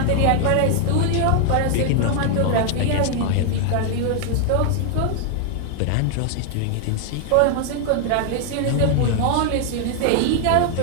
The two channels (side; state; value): both; different; correlation 0.00